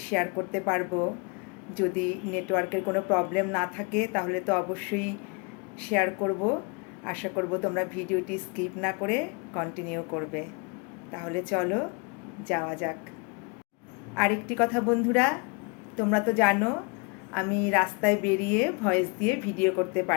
শেয়ার করতে পারবো। যদি নেটওয়ার্কের কোনো প্রবলেম না থাকে তাহলে তো অবশ্যই শেয়ার করব। আশা করব তোমরা ভিডিওটি স্কিপ না করে কন্টিনিউ করবে। তাহলে চলো যাওয়া যাক। আরেকটি কথা বন্ধুরা, তোমরা তো জানো আমি রাস্তায় বেরিয়ে ভয়েস দিয়ে ভিডিও করতে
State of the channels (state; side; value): quieter; right; 32.3 dB